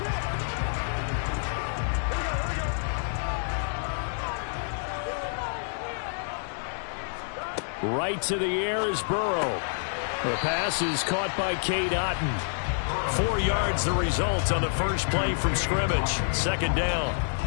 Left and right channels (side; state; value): right; silent; digital silence